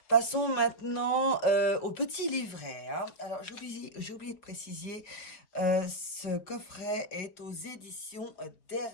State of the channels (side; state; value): right; late; 5.4 ms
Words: Passons maintenant au petit livret, hein. Alors, j'ai oublié de préciser, ce coffret est aux éditions